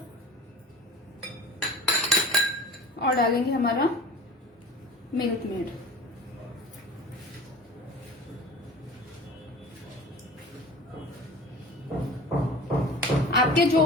और डालेंगे हमारा मिल्क मेड। आपके जो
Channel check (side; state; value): both; normal; correlation 0.39